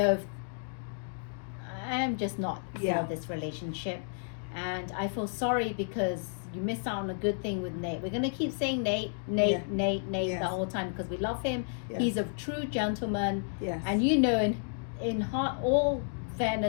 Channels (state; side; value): silent; right; digital silence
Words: if I'm just not Yeah. for this relationship. And I feel sorry because you missed out on a good thing with Nate. We're going to keep saying Nate Yeah. the Yes. whole time because we love him. Yes. He's a true gentleman. Yes. And in heart, all